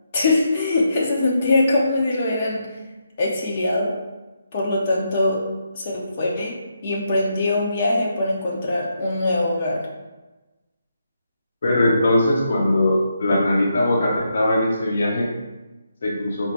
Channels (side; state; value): both; inverted; correlation -0.81